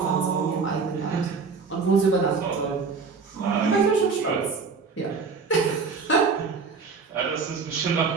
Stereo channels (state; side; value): quieter; left; 5.0 dB